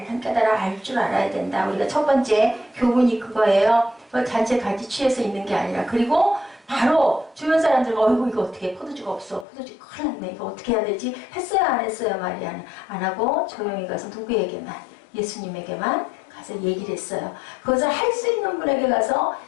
깨달아 알 줄 알아야 된다. 우리가 첫 번째 교훈이 그거예요. 잔치에 같이 취해서 있는 게 아니라. 그리고 바로 주변 사람들과 어이구 이거 어떻게 포도주가 없어. 포도주 큰일 났네. 이거 어떻게 해야 되지? 했어요 안 했어요? 마리아는 안 하고 조용히 가서 누구에게만? 예수님에게만 가서 얘기를 했어요. 그것을 할 수 있는 분에게 가서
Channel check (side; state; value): right; drops out; at 9.5 s